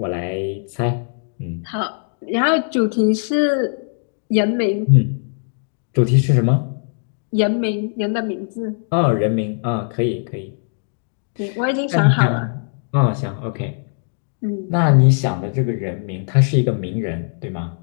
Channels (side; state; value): right; silent; digital silence